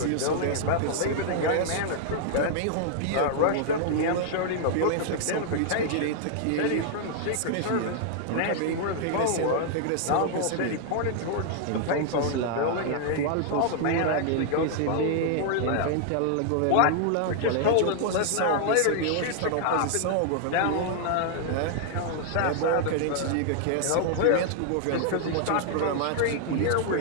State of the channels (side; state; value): both; different; correlation 0.00